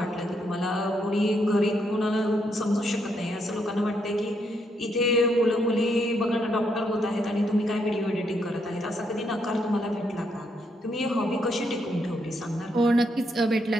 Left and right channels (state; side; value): normal; both; correlation 0.76